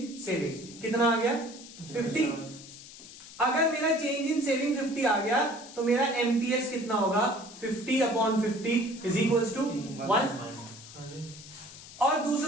सेविंग कितना आ गया? 50। अगर मेरा चेंज इन सेविंग 50 आ गया तो मेरा MPS कितना होगा? 50 अपॉन 50 इज इक्वल्स टू 1। और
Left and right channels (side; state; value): left; noise; hiss, 16 dB below the sound